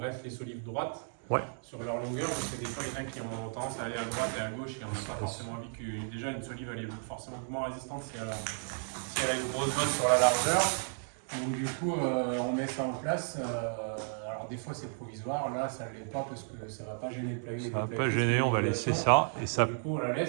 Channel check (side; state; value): left; silent; 55 dB below the other